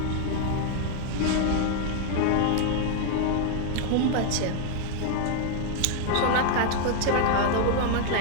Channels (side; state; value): both; different; correlation 0.00